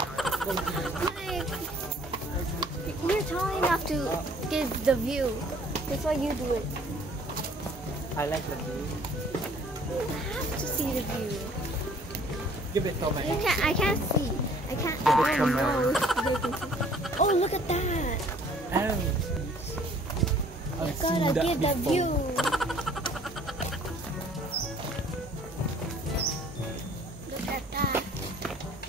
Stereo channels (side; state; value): both; normal; correlation 0.56